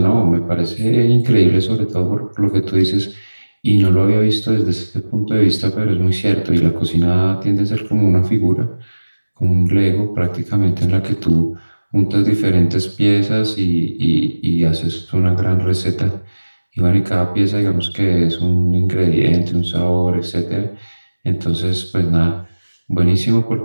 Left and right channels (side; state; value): both; inverted; correlation -1.00